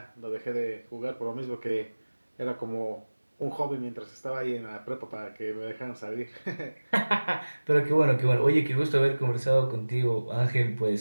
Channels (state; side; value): inverted; both; correlation -1.00